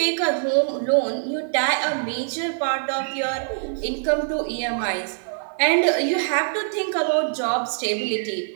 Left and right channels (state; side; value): silent; left; digital silence